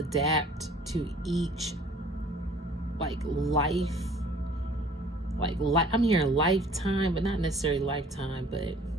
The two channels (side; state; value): both; normal; correlation 0.52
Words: to each life. I'm hearing lifetime, but not necessarily lifetime, but